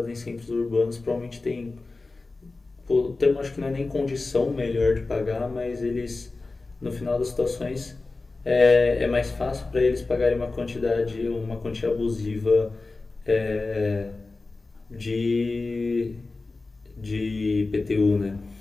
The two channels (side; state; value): right; quieter; 3.5 dB